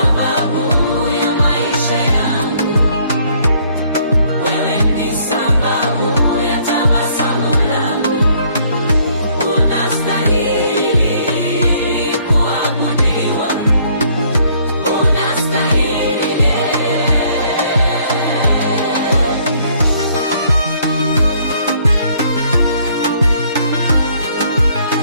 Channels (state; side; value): inverted; both; correlation -0.64